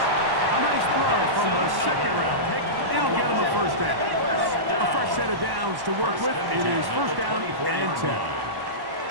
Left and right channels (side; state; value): left; late; 1.1 ms